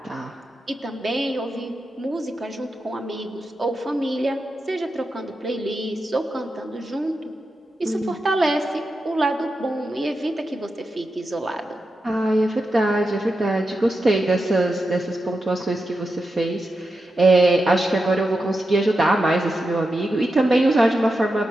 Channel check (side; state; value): both; normal; correlation 0.89